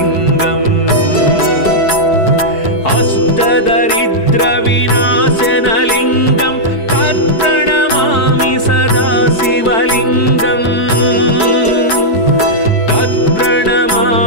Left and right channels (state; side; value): late; right; 4.6 ms